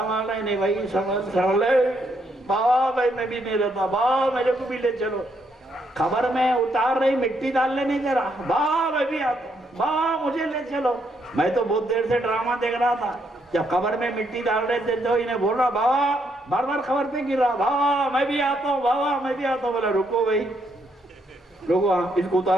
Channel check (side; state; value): both; normal; correlation 0.75